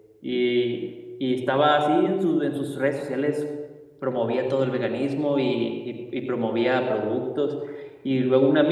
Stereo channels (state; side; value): identical; both; correlation 1.00